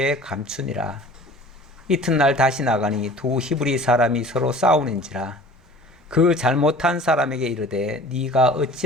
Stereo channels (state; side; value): normal; both; correlation 0.45